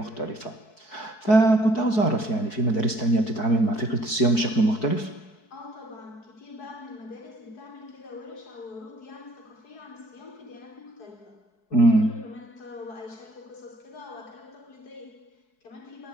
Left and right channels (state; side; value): late; right; 4.7 ms